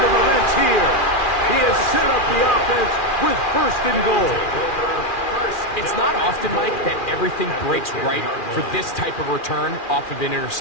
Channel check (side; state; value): right; late; 2.4 ms